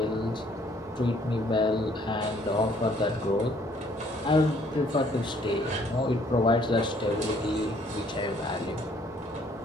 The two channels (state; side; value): normal; both; correlation 0.62